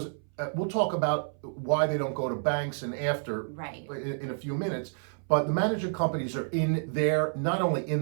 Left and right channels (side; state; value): left; silent; 58 dB below the other